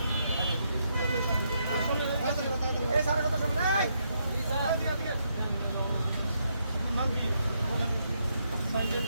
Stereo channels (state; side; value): inverted; both; correlation -0.78